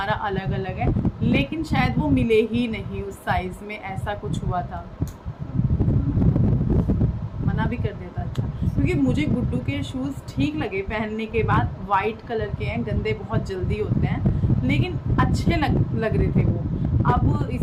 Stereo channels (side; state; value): both; identical; correlation 1.00